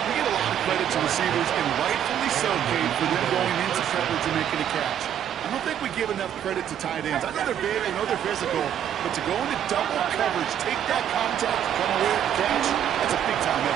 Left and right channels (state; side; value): quieter; left; 9.8 dB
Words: We get a lot of credit to receivers, and rightfully so, Kate, for them going into coverage and making a catch. I don't think we give enough credit to tight ends. I know they're big, I know they're physical, but to go into double coverage, take that contact, come away with the catch, that's a big-time